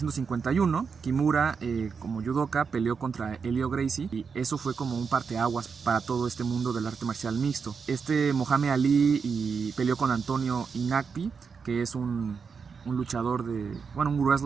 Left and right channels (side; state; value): left; quieter; 5.7 dB